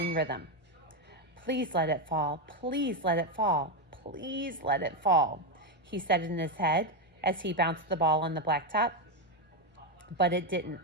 rhythm. "Please let it fall. Please let it fall. Please let it fall," he said in his head as he bounced the ball on the blacktop. But it didn't.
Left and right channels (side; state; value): both; normal; correlation 0.07